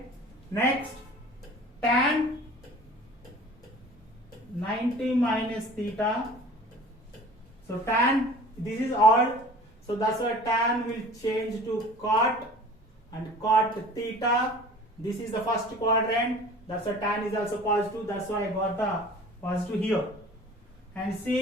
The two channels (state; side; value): normal; both; correlation 0.45